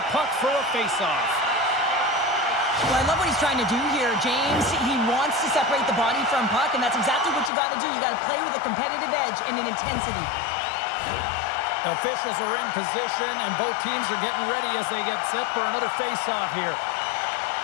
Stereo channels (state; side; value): drops out; right; at 7.5 s